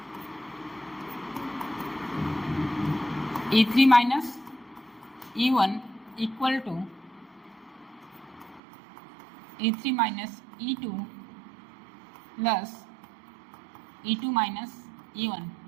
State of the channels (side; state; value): left; drops out; at 8.6 s